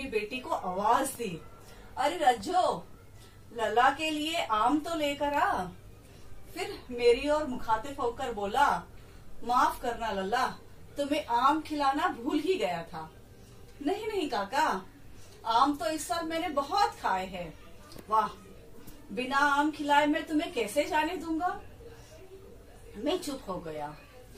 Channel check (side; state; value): both; identical; correlation 1.00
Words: बेटी को आवाज दी, अरे रज्जो, लल्ला के लिए आम तो लेकर आ। फिर मेरी ओर मुखातिब होकर बोला, माफ करना लल्ला, तुम्हें आम खिलाना भूल ही गया था। नहीं नहीं काका, आम तो इस साल मैंने बहुत खाए हैं। वाह, बिना आम खिलाए मैं तुम्हें कैसे जाने दूंगा। मैं चुप हो गया।